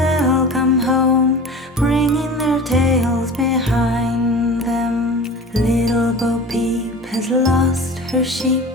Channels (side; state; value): both; normal; correlation 0.36